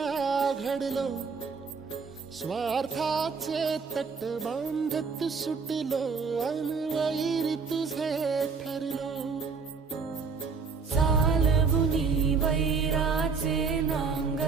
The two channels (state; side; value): quieter; left; 5.1 dB